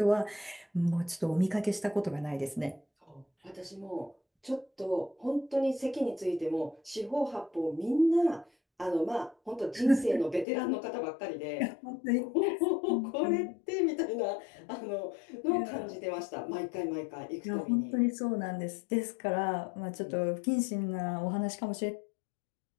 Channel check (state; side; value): drops out; right; at 10.5 s